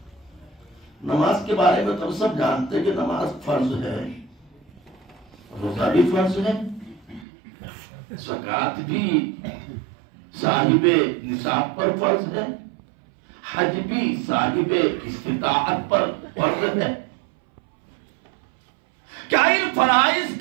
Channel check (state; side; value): drops out; left; at 7.2 s